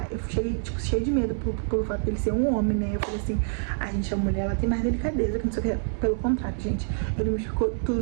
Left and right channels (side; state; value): left; silent; digital silence